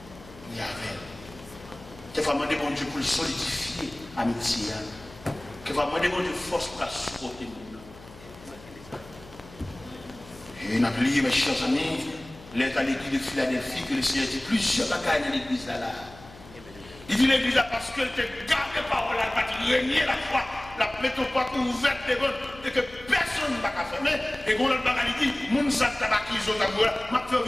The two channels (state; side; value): noise; left; hum, 20 dB below the sound